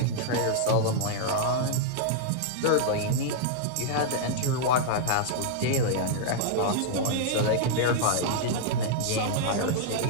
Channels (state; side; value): different; both; correlation -0.01